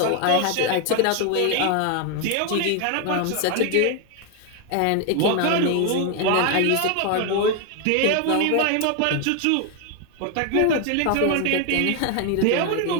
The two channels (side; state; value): both; different; correlation 0.01